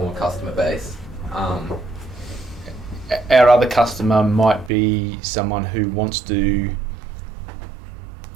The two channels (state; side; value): drops out; left; at 4.7 s